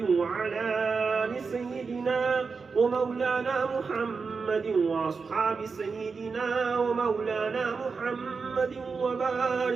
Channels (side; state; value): left; quieter; 4.9 dB